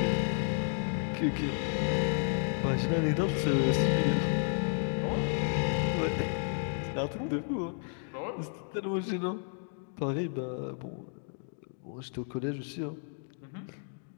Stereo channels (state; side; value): silent; right; digital silence